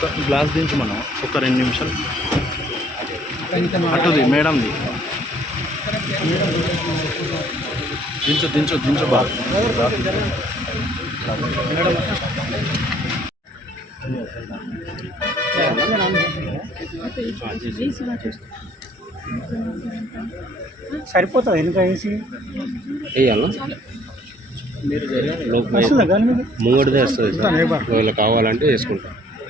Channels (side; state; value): both; normal; correlation 0.60